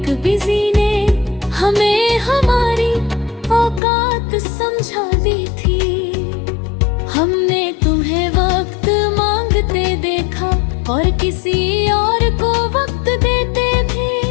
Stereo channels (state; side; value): drops out; right; at 3.8 s